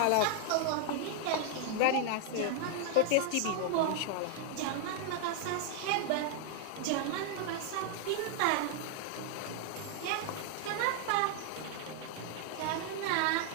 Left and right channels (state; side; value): different; both; correlation 0.00